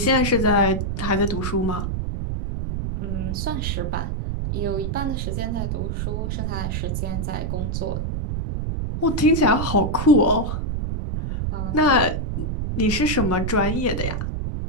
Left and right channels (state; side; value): noise; right; rumble, 2 dB below the sound